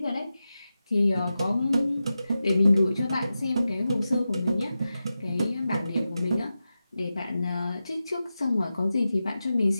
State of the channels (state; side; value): inverted; both; correlation -0.92